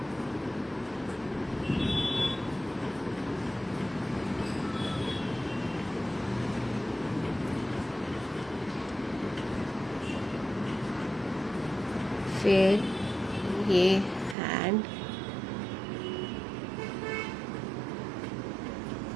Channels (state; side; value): drops out; left; at 14.4 s